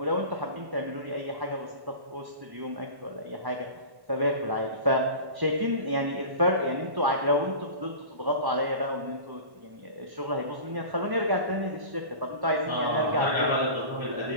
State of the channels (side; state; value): left; late; 1.1 ms